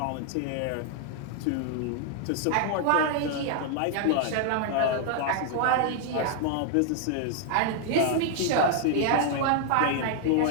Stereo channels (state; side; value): different; both; correlation 0.00